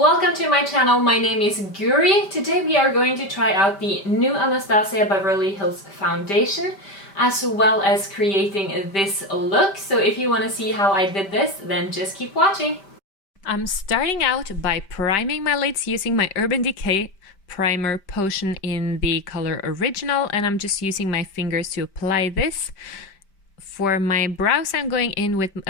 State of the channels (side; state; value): right; late; 5.1 ms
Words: to my channel. My name is Guri. Today we are going to try out the new Anastasia Beverly Hills foundation as well as creating this look. So if you want to see how I did this, then just keep watching. I'm starting out by priming my lids using my Urban Decay primer potion in the color Original, and I'm just using my fingers to apply this. For my brows, I'm going in with